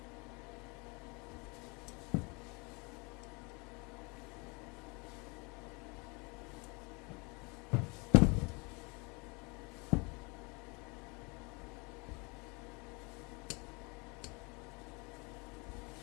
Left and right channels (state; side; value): quieter; right; 29.4 dB